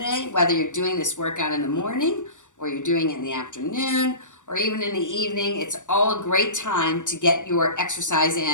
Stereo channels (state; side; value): late; right; 0.86 ms